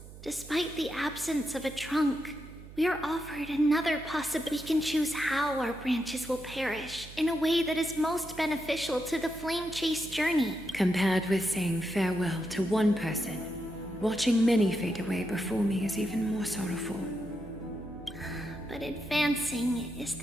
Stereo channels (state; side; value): noise; right; hum, 16 dB below the sound